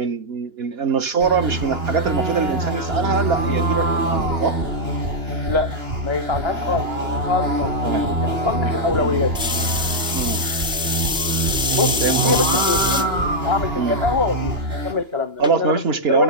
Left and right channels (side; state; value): left; late; 2.9 ms